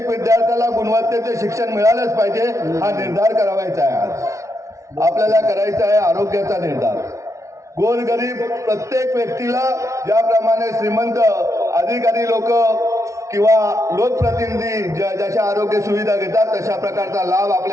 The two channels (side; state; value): left; late; 0.15 ms